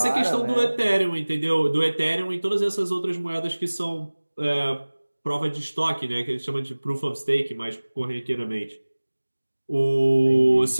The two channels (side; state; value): both; inverted; correlation -1.00